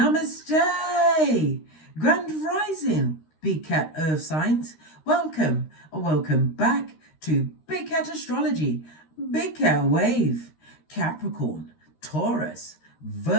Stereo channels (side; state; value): right; late; 13 ms